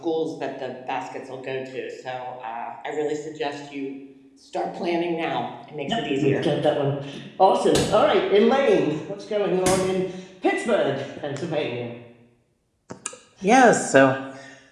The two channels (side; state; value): both; identical; correlation 1.00